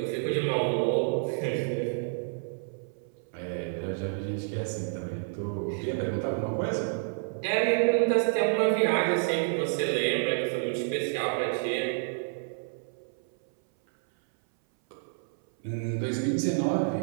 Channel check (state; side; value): silent; left; 58 dB below the other